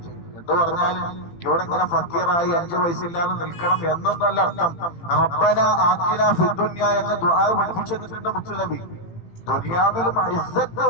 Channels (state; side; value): late; right; 18 ms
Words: എന്ന് പറഞ്ഞാൽ ഇവിടെ ഇങ്ങനെ ഫക്കീറായി 5 വയസ്സില്ലാതെ നിൽക്കണം എന്നൊന്നല്ല അർത്ഥം. റബ്ബന ആതിനാ ഫിദ്ദുനിയ എന്ന ദുആ പഠിപ്പിച്ചിട്ടുണ്ട് മുത്തുനബി. ദുനിയാവിലും ഇസ്സത്ത്